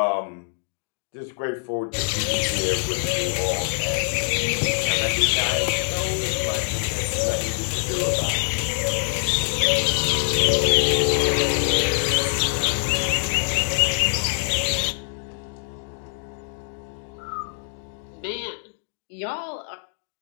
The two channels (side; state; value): right; silent; digital silence